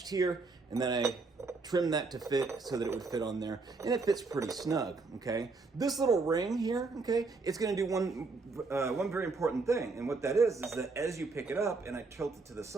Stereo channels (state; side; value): quieter; left; 3.9 dB